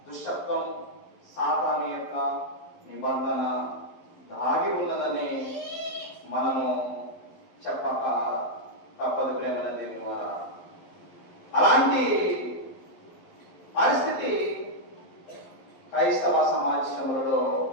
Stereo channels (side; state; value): right; late; 11 ms